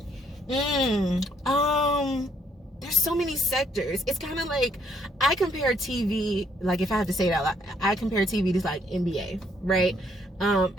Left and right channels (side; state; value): both; normal; correlation 0.68